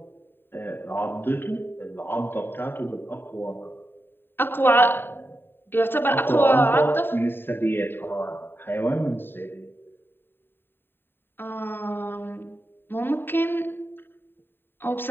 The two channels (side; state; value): right; late; 0.10 ms